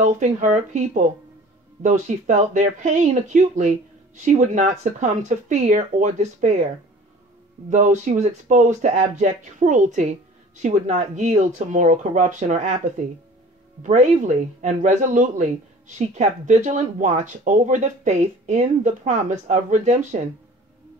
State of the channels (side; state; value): both; normal; correlation 0.45